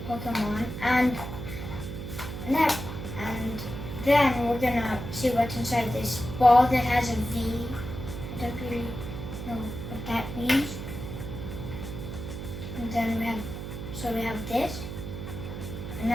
Pokemon, and then we're gonna see what's inside this ball that has a V. I don't really know what that means. And then we have this,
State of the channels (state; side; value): noise; right; hum, 7 dB below the sound